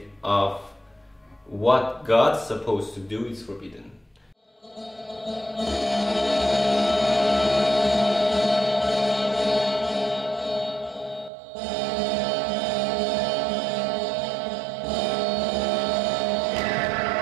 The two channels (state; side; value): drops out; left; at 11.3 s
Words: of what God's supposed to do is forbidden.